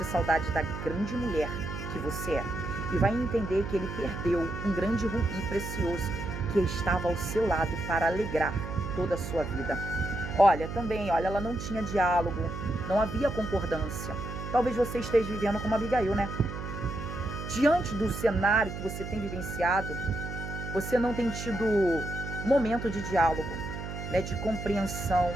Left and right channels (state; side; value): noise; right; hum, 7 dB below the sound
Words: saudade da grande mulher que você é. e vai entender que ele perdeu um grande rubi precioso que estava ao seu lado para alegrar toda a sua vida. Olha, também, olha, ela não tinha diálogo, não havia concordância. Talvez você esteja vivendo como Abigail, né? Diante do cenário que você tem vivenciado, você não tem tido momento de diálogo, né, de compreensão,